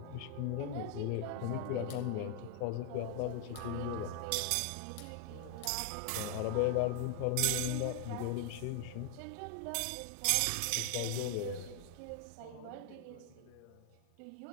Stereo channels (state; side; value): different; both; correlation 0.00